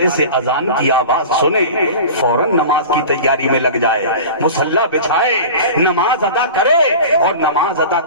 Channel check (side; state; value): both; inverted; correlation -0.35